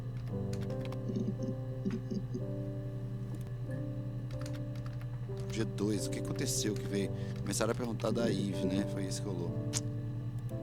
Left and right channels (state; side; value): identical; both; correlation 1.00